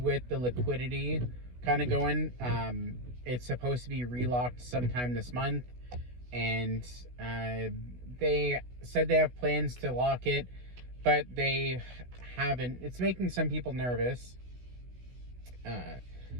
the liquidity kind of going. It's supposed to be relocked sometime this month, and they said they have plans to lock it, but they haven't. It's making some people nervous,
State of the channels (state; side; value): late; left; 16 ms